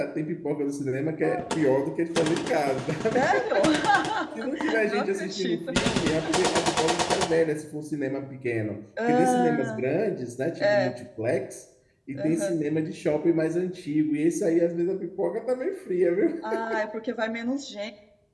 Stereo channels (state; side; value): identical; both; correlation 1.00